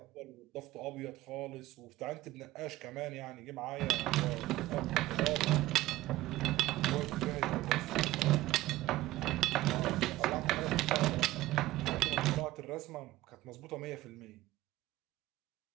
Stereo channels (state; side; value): quieter; left; 16.8 dB